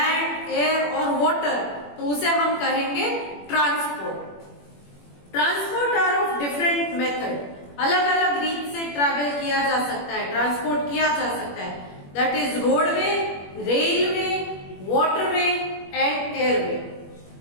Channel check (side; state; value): right; late; 21 ms